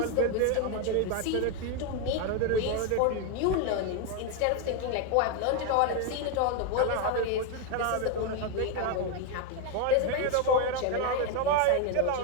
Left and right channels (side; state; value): both; different; correlation 0.01